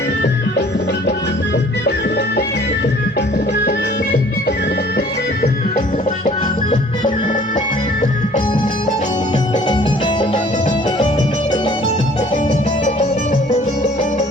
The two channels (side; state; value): both; normal; correlation 0.54